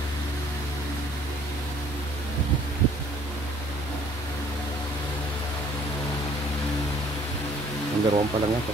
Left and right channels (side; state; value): both; normal; correlation 0.57